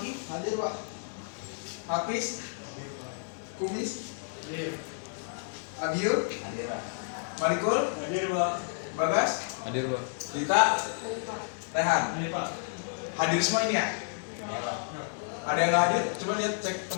hadir Pak. Hafiz, Kumis, Abiu, Hadir Pak. Malikul, Hadir Pak. Bagas, Hadir Pak. Dita, Rehan. Hadir Pak. Hadir semua ini ya? Ya Pak. Ada yang nggak hadir? Coba lihat cek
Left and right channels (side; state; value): right; silent; 57 dB below the other